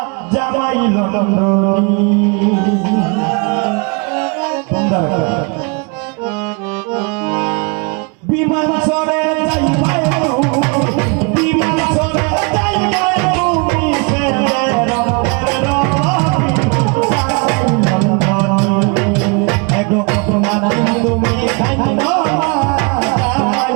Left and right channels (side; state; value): left; quieter; 32.5 dB